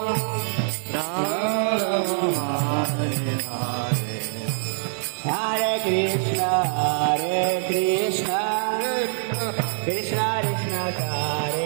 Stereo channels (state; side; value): silent; left; 62 dB below the other